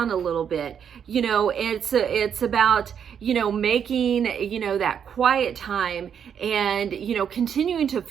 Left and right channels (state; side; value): quieter; left; 8.0 dB